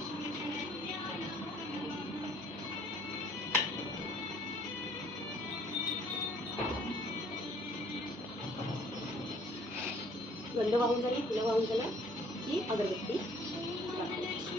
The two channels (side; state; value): both; normal; correlation 0.58